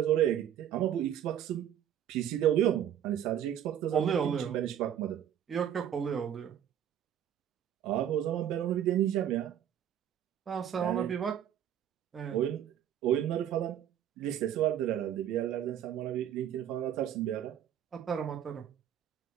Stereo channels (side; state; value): left; quieter; 10.1 dB